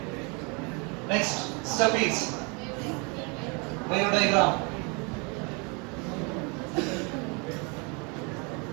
next step is wave diagram.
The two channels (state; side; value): quieter; left; 31.7 dB